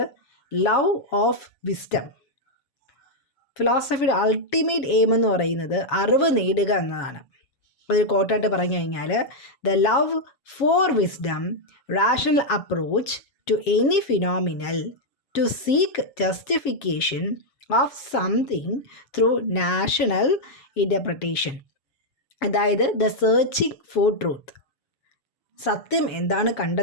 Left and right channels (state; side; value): late; right; 7.3 ms